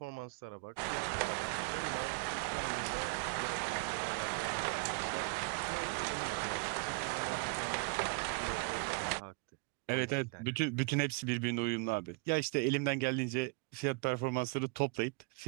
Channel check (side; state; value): left; quieter; 30.1 dB